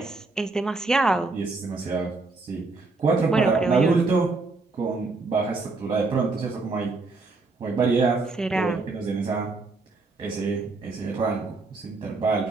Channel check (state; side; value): quieter; left; 3.6 dB